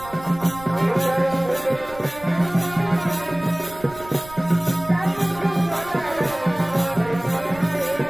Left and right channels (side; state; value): right; noise; rumble, 18 dB below the sound